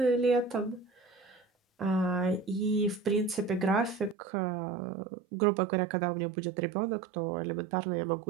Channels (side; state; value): left; drops out; at 4.2 s